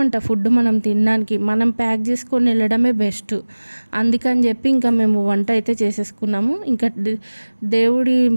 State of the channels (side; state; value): both; inverted; correlation -1.00